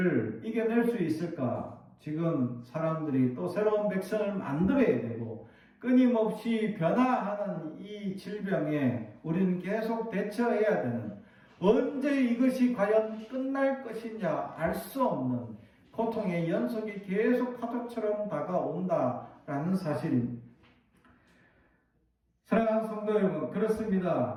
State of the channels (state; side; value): identical; both; correlation 1.00